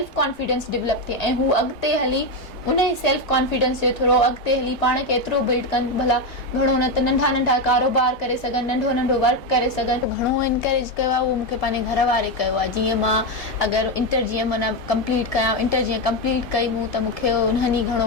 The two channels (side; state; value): both; normal; correlation 0.10